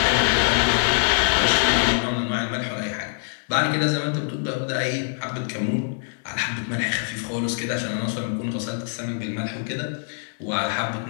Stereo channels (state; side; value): silent; right; digital silence